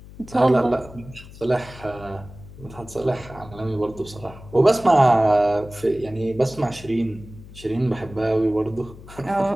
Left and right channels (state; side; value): noise; left; hum, 18 dB below the sound